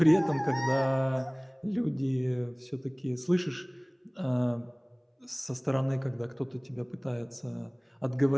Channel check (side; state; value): both; identical; correlation 1.00